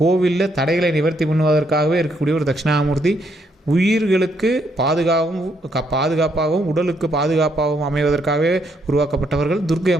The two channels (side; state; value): both; normal; correlation 0.74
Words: கோவிலில் தடைகளை நிவர்த்தி பண்ணுவதற்காகவே இருக்கக்கூடிய ஒரு தட்சிணாமூர்த்தி. உயிர்களுக்கு பாதுகாப்பாகவும் உடலுக்கு பாதுகாப்பாகவும் அமைவதற்காகவே உருவாக்கப்பட்டவர்கள் துர்க்கை